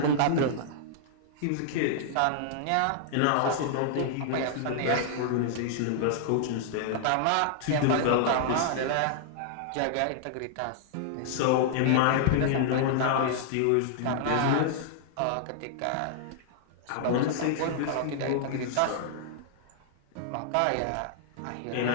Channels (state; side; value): different; both; correlation -0.01